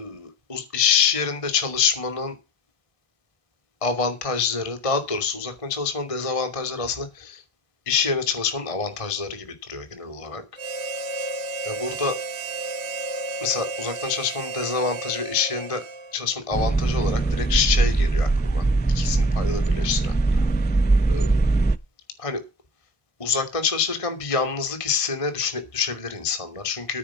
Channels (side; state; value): right; late; 1.5 ms